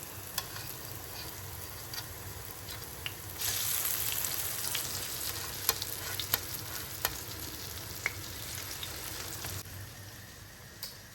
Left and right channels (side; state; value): both; identical; correlation 1.00